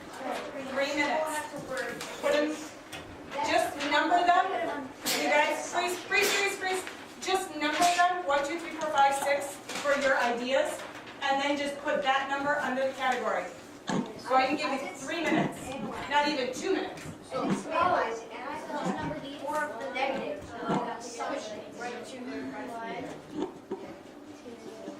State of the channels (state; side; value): identical; both; correlation 1.00